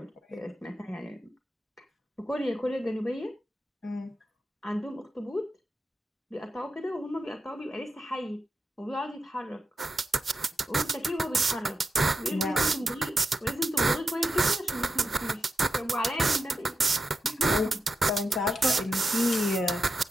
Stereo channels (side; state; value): both; normal; correlation 0.89